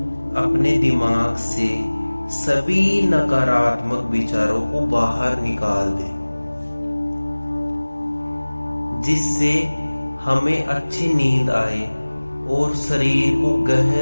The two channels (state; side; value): inverted; both; correlation -1.00